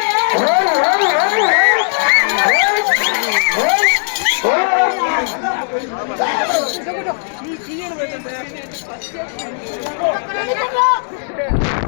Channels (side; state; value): right; silent; digital silence